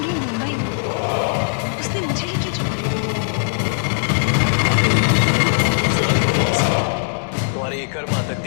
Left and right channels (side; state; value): right; silent; digital silence